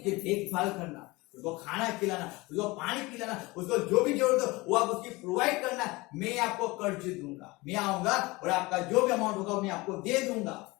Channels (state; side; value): quieter; right; 22.6 dB